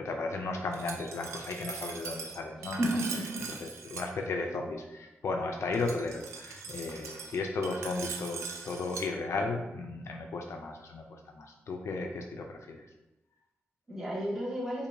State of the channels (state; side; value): normal; both; correlation 0.70